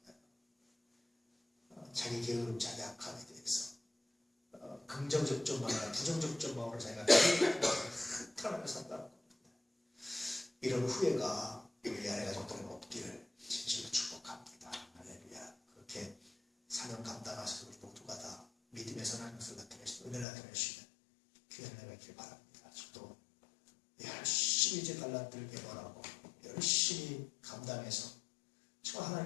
자기 게으름, 자기 악함에 대해서 긍정적 점만 아니라 부정적 점만으로 자기가 한탄하며 산다는 겁니다. 이런 후회가 우리 안에 가족들은 없기를 진실로 축복합니다. 할렐루야. 그렇게 사명 감당하셔서 우리 모두가 다 믿음의 선한 것을 나타내시고 은혜를 나타내시는 귀한 은혜가 있길 바랍니다. 저도 열심히 제 달란트를 개발하고 열심히 감당해서 정말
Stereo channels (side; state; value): right; drops out; at 20.2 s